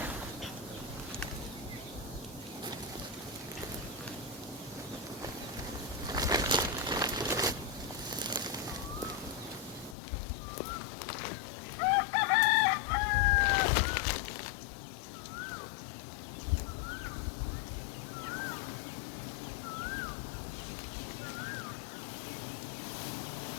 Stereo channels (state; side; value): drops out; right; at 10.0 s